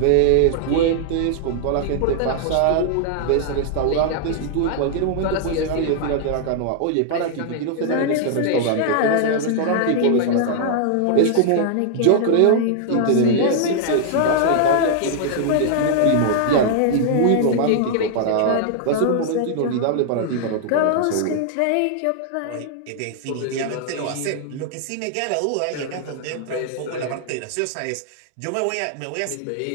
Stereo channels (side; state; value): both; different; correlation -0.01